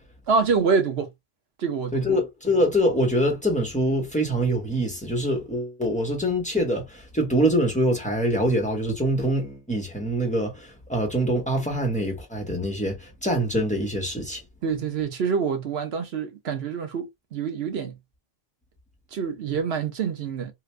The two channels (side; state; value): both; normal; correlation 0.35